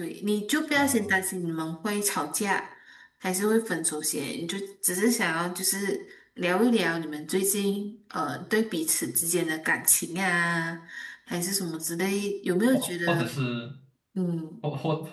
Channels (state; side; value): identical; both; correlation 1.00